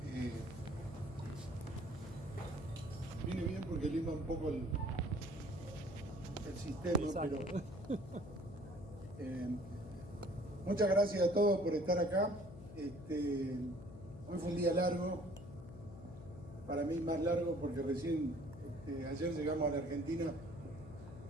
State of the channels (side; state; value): left; noise; hum, 14 dB below the sound